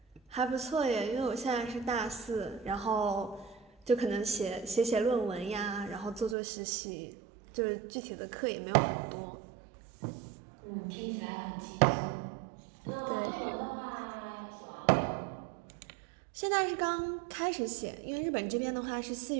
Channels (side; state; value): left; drops out; at 6.4 s